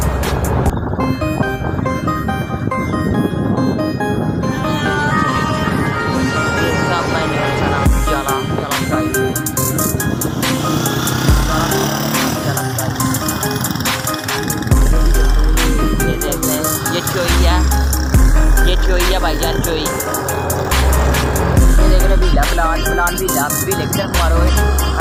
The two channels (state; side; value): identical; both; correlation 1.00